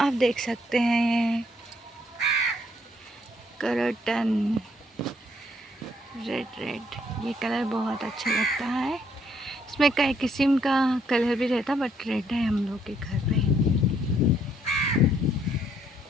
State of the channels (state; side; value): normal; both; correlation 0.69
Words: देख सकते हैं ये करटन रेड रेड, ये कलर बहुत अच्छा लगता है। इसमें कई किस्म का कलर भी रहता, बट रेड है हम लोग के घर पे।